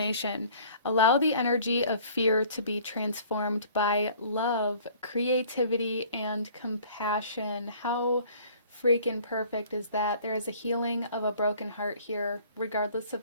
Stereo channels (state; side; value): inverted; both; correlation -0.52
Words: Allow the energy of fear to be transformed by love, creativity, and compassion. How freaking perfect is that? There is a healing of a broken heart here, regardless